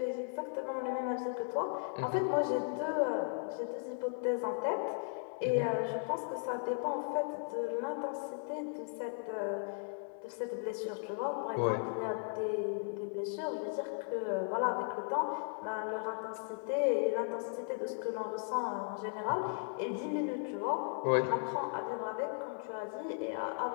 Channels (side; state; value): right; silent; 53 dB below the other